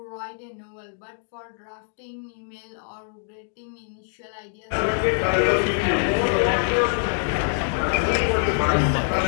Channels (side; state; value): right; silent; digital silence